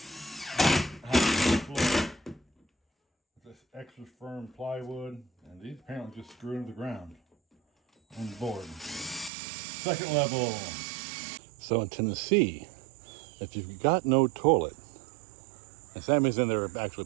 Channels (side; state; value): left; drops out; at 9.3 s